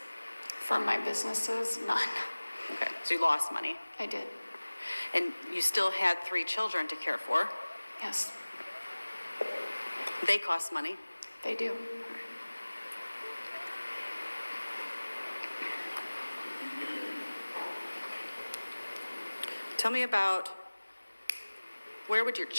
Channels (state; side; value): inverted; both; correlation -1.00